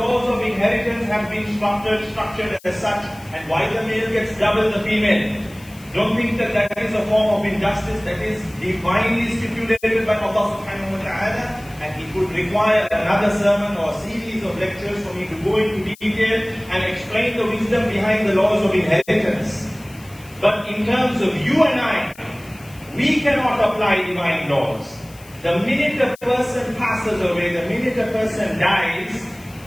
of inheritance have been structured as such, and why the male gets double the female. Don't think that that is a form of injustice. That is divinely stipulated by Allah subhanahu wa ta'ala, and it would require another sermon or a series of lectures for me to go into detail and explain the wisdom behind the laws of inheritance. But in terms of you and I, we cannot apply divine laws. The minute a person passes away, the minute a person dies,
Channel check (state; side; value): noise; left; hiss, 23 dB below the sound